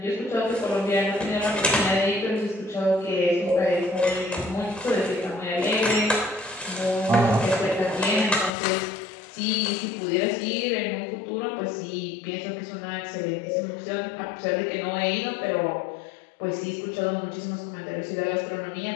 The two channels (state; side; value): drops out; right; at 8.5 s